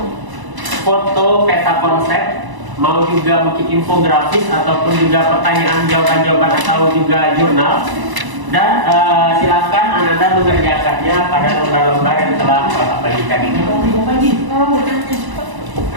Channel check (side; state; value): left; late; 1.0 ms